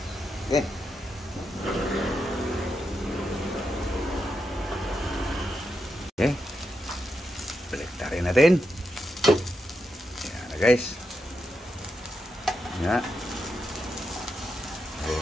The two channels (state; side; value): normal; both; correlation 0.85